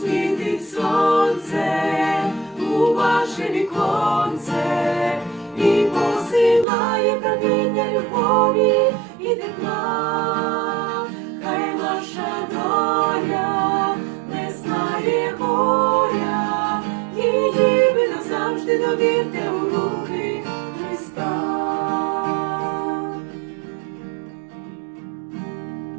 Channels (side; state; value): left; drops out; at 6.7 s